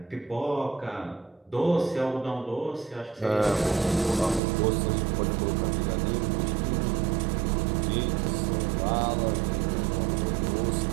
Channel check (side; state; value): left; drops out; at 4.4 s